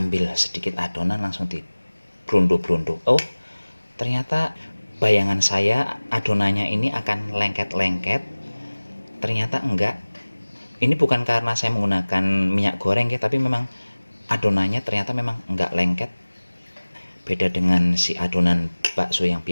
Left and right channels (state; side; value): inverted; both; correlation -1.00